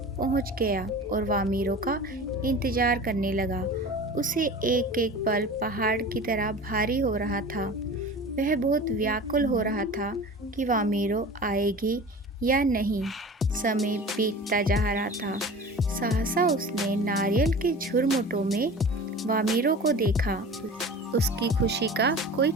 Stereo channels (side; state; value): both; normal; correlation 0.37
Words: पहुंच गया और वामीरो का इंतजार करने लगा। उसे एक एक पल पहाड़ की तरह भारी हो रहा था। वह बहुत व्याकुल हो रहा था कि वामीरो आएगी या नहीं। समय बीतता जा रहा था। सहसा उसने नारियल के झुरमुटों में वामीरो को देखा। उसकी खुशी का कोई